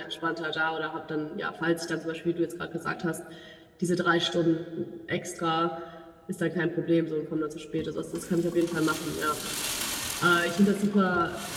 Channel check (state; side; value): identical; both; correlation 1.00